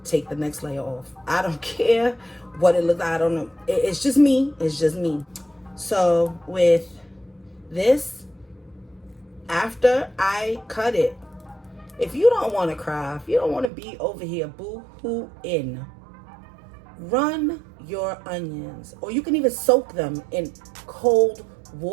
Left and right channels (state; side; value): drops out; left; at 13.7 s